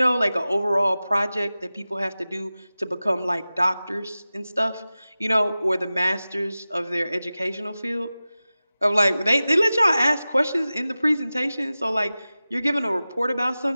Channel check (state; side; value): inverted; both; correlation -0.96